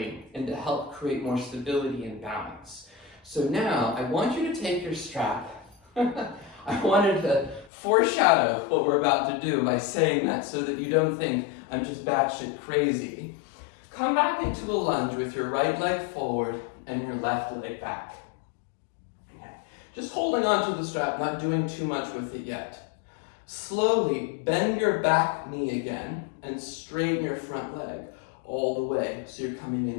and to help create more stability and balance. So now I want you to take your strap. I wanted to foreshadow what we're about to do by saying that so that you don't think I'm just batshit crazy. Come back into a lunge with your right leg forward and your left leg back. Okay. Just holding onto the strap, not doing too much with it yet. Slowly bend your back knee again and straighten your front leg all the way so you're coming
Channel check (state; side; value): drops out; right; at 7.7 s